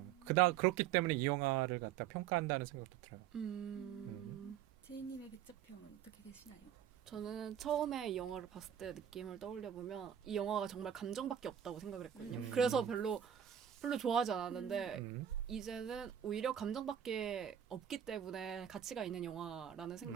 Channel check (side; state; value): left; quieter; 9.7 dB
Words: 그렇기 때문에 이 영화를 갖다 평가한다는 생각도 들어요. 제이님의 백자평은 어떻게 되시나요? 저는 처음에 이 영화를 봤을 때 느낌을 떠올려 보면 이 영화가 정말 감정밖에 없다고 생각을 했거든요. 그래서 별로 좋아하지 않았는데 이제는 오히려 감정밖에 없기 때문에 가치가 있는 영화라는